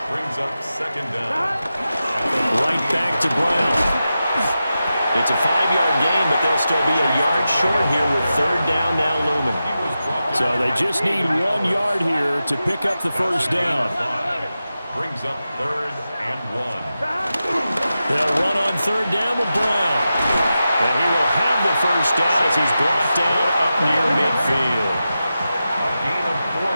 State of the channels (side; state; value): both; inverted; correlation -0.91